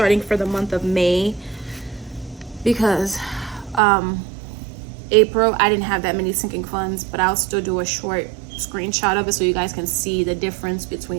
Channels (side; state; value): left; drops out; at 3.8 s